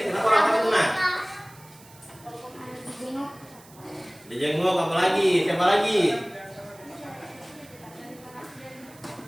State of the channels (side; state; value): right; noise; hiss, 24 dB below the sound